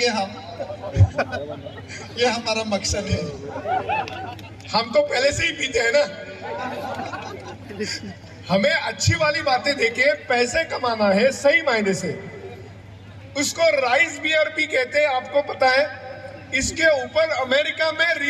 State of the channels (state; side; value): identical; both; correlation 1.00